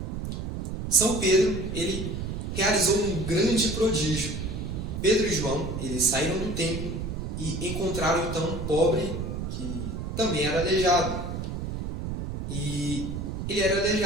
São Pedro, ele realizou um grande prodígio. Pedro e João, eles saíram do templo e encontraram então um pobre que também era aleijado. E ele era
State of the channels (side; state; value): right; noise; rumble, 4 dB below the sound